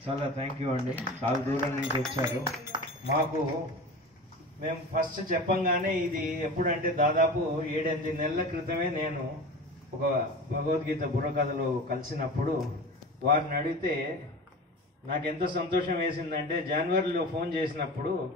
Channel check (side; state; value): both; normal; correlation 0.33